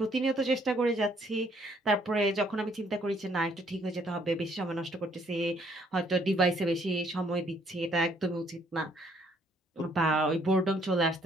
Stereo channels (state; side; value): normal; both; correlation 0.65